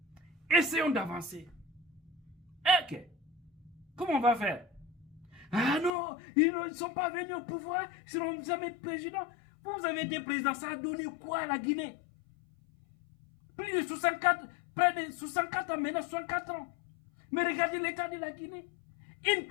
Essayons d'avancer. Ok. Comment on va faire? Ah non, ils ne sont pas venus au pouvoir, ils ne seront jamais présidents. Vous avez été président, ça a donné quoi à la Guinée? Plus de 64, près de 64 ans, maintenant 64 ans. Mais regardez l'état de la Guinée. Une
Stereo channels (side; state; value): right; drops out; at 5.9 s